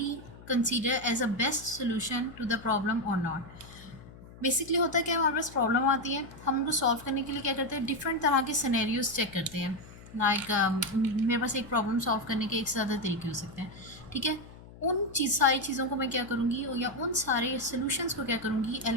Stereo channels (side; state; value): left; noise; hum, 18 dB below the sound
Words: consider as a best solution to the problem और not. Basically होता है क्या, हमारे पास problem आती है, हम उनको सॉल्व करने के लिए क्या करते हैं? डिफरेंट तरह के सिनेरियोज चेक करते हैं। लाइक मेरे पास एक प्रॉब्लम सॉल्व करने के एक से ज़्यादा तरीके हो सकते हैं, ठीक है। उन सारी चीज़ों को मैं क्या करूँगी, या उन सारे सोल्यूशंस को क्या करूँगी,